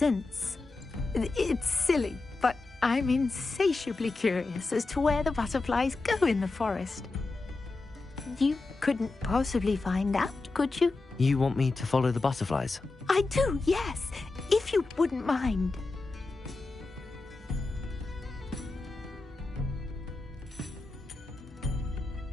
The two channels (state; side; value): quieter; right; 3.5 dB